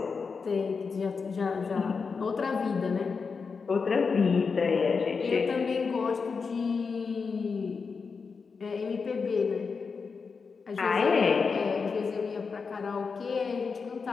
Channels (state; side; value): quieter; right; 5.1 dB